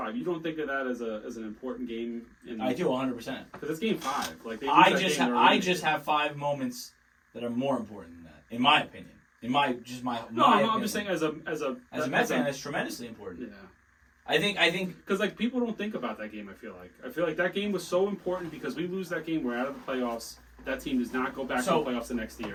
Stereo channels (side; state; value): both; identical; correlation 1.00